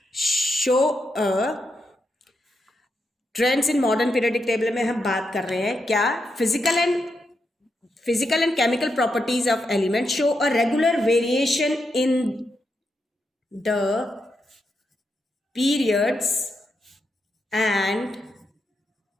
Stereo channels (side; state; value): both; normal; correlation 0.84